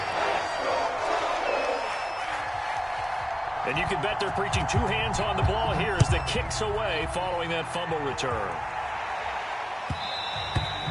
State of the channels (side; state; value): both; identical; correlation 1.00